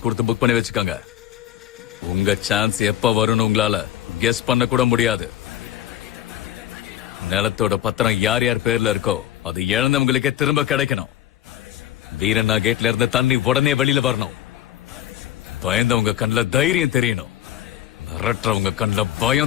கொடுத்து புக் பண்ணி வச்சுக்கோங்க. உங்க சான்ஸ் எப்ப வரும்னு உங்களால கெஸ் பண்ண கூட முடியாது. நிலத்தோட பத்திரம் யார் யார் பேர்ல இருக்கோ அது இழந்தவங்களுக்கே திரும்ப கிடைக்கணும். வீரண்ணா கேட்ல இருந்து தண்ணி உடனே வெளியில வரணும். பயந்தவங்க கண்ணுல தைரியம் தெரியணும். மிரட்டுறவங்க கண்ணுல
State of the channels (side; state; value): right; quieter; 12.5 dB